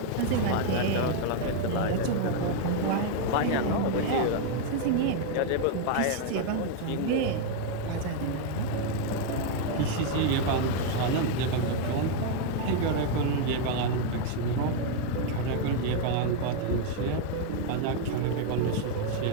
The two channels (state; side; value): different; both; correlation 0.00